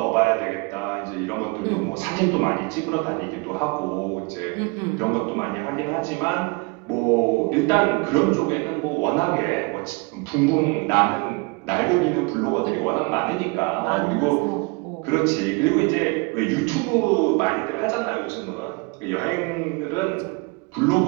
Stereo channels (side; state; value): left; quieter; 29.7 dB